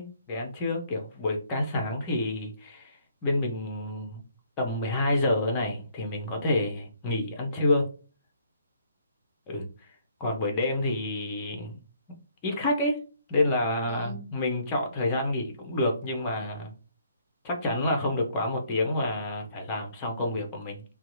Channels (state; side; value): inverted; both; correlation -0.64